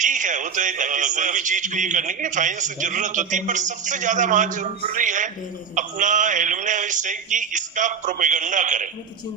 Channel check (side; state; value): left; quieter; 6.6 dB